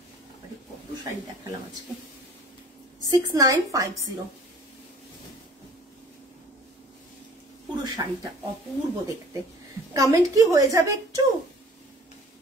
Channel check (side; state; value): both; normal; correlation 0.49